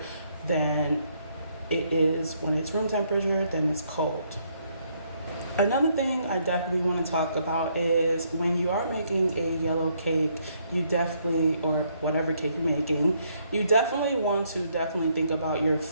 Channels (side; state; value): both; inverted; correlation -0.71